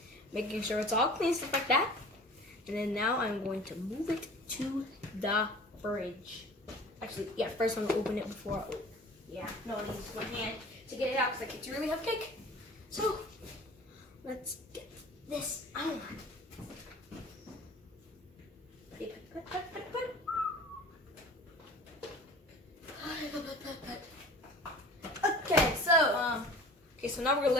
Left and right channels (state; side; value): normal; both; correlation 0.43